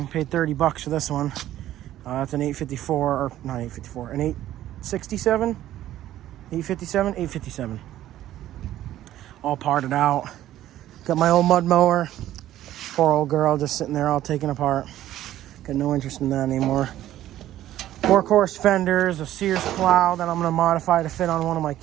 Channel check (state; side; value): quieter; left; 13.2 dB